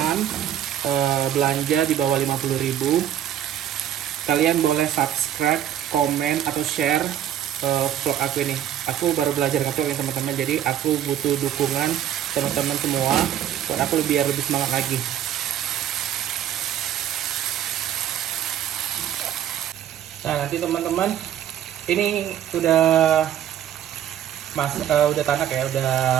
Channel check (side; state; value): left; quieter; 10.7 dB